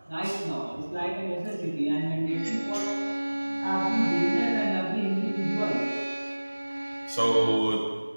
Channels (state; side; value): inverted; both; correlation -1.00